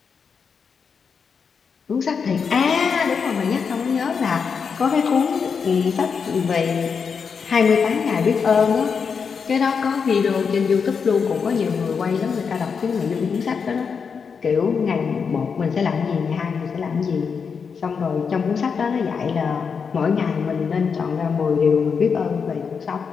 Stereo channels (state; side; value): quieter; right; 6.0 dB